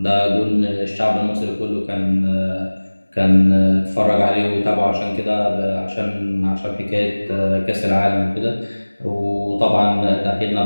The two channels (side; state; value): both; inverted; correlation -1.00